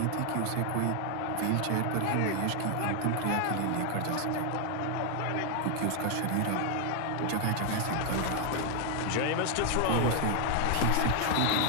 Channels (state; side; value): different; both; correlation 0.00